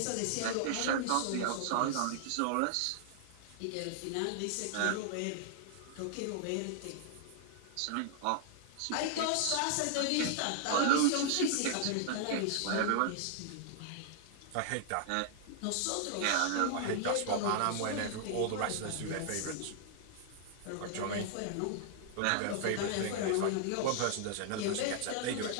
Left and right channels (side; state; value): both; different; correlation -0.01